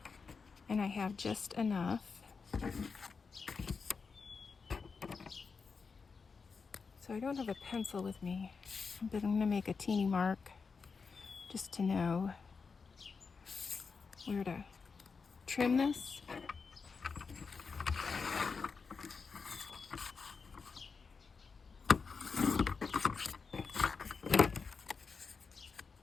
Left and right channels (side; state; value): right; quieter; 5.1 dB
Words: and I have just enough So I don't have a pencil with me, but I'm going to make a teeny mark just to know where to trim this.